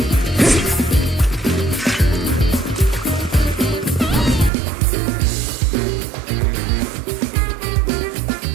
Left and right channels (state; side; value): drops out; left; at 4.5 s